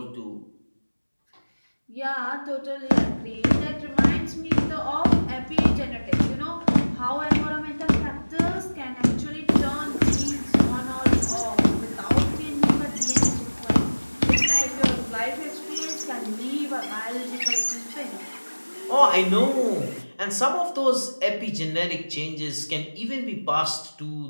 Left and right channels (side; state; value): both; inverted; correlation -1.00